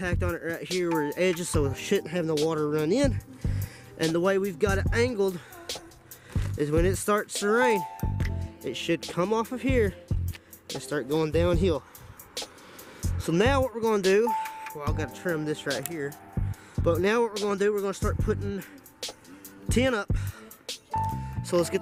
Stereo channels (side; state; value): both; identical; correlation 1.00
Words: on it right here where the edges, so it shouldn't have no water run in. And the way we've got it angled is when it starts to rain, it should come off of here and start going downhill. So now what we're going to do, well, I've got to trim this right here. But now what we're going to do, we're going to start putting tin up. So let's